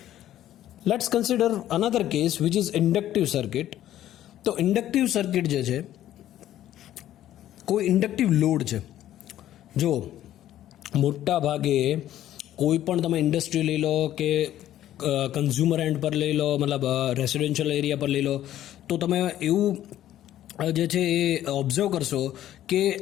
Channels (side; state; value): right; quieter; 12.5 dB